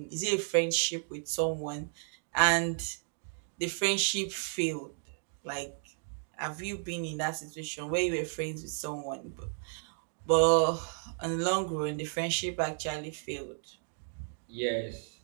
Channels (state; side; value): silent; left; digital silence